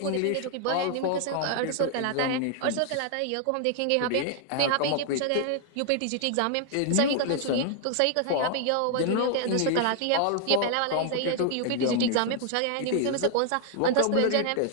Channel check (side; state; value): both; different; correlation 0.00